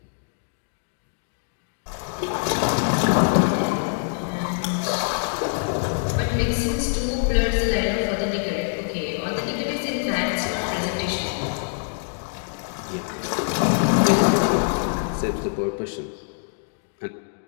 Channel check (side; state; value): right; silent; digital silence